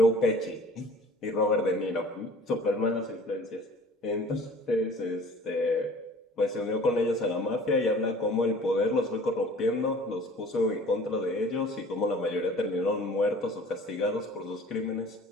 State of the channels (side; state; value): both; normal; correlation 0.47